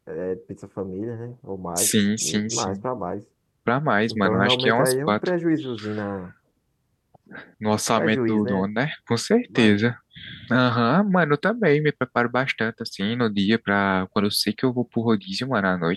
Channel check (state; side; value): identical; both; correlation 1.00